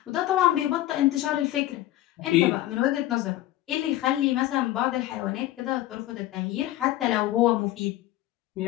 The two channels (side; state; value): right; quieter; 15.1 dB